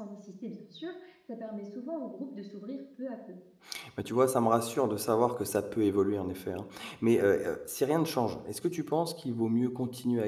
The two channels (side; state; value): both; identical; correlation 1.00